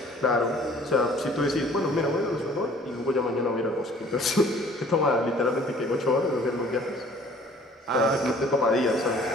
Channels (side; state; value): both; normal; correlation 0.53